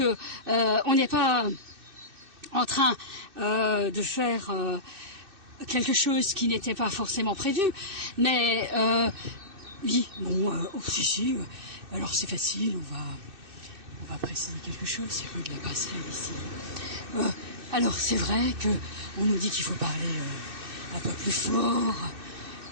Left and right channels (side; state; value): left; late; 2.6 ms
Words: on n'est pas en train de faire quelque chose qui n'était pas forcément prévu, mais oui, bon, si, alors c'est facile, on va préciser quelque chose. C'est rue de la Passerelle ici. Alors c'est vrai que on nous dit qu'il faut parler un peu plus fort.